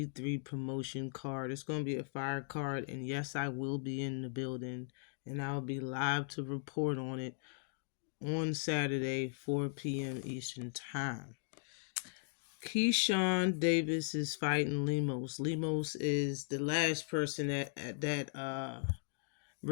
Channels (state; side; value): silent; right; digital silence